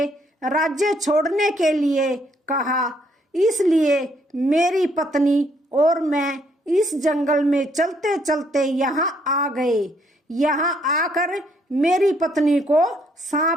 राज्य छोड़ने के लिए कहा, इसलिए मेरी पत्नी और मैं इस जंगल में चलते चलते यहाँ आ गए। यहाँ आकर मेरी पत्नी को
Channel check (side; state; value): both; normal; correlation 0.69